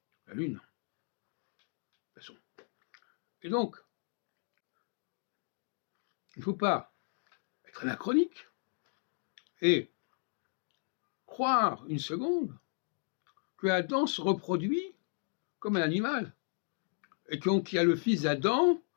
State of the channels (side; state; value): right; silent; 54 dB below the other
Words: la Lune, de toute façon. Et donc, il ne faut pas être anachronique et croire une seconde que Adam se reproduit comme un animal, et qu'il y a le fils d'Adam